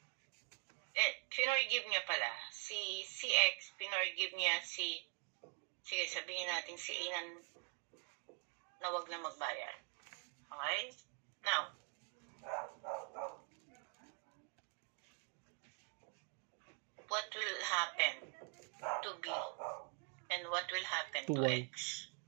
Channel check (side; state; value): left; quieter; 39.7 dB